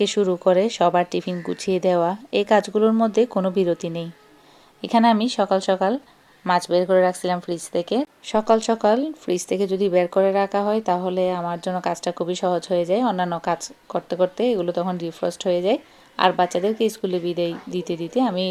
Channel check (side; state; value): both; identical; correlation 1.00